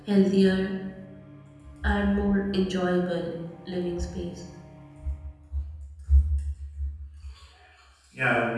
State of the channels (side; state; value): both; identical; correlation 1.00